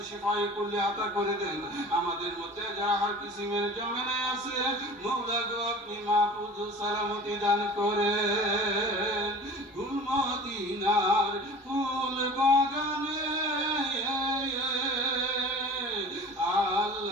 শিফায়ে কুল্লি আতা করে দেন, আমাদের মধ্যে যারা হার কিসিমের জামেলায় আছে মওলা গো আপনি মাহফুজ সালামতি দান করেন। গুলমদিনার ফুল বাগানে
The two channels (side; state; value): both; normal; correlation 0.40